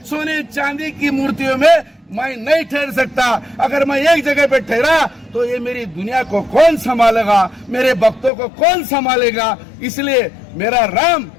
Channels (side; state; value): right; drops out; at 8.3 s